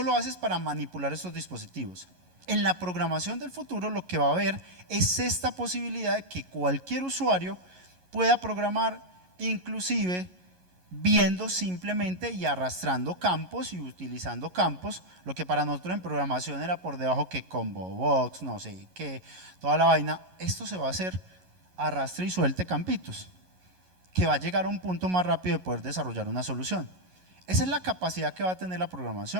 lo haces para manipular estos dispositivos. En la programación del futuro lo que va a haber es esta posibilidad de que cualquier usuario pueda programar, inclusive viendo simplemente y arrastrando campos y utilizando campos, lo que para nosotros en programación era por debajo que combo box, no sé qué, toda la vaina. Esto se va a hacer arrastre y suelte campitos, que va a llegar a un punto más rápido de poder desarrollar una solución. Esa es la capacidad que va a tener la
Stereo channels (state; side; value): late; left; 11 ms